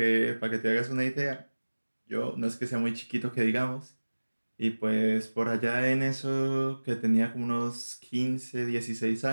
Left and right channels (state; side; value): inverted; both; correlation -1.00